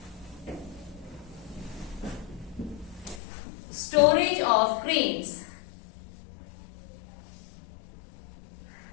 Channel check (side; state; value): right; drops out; at 3.2 s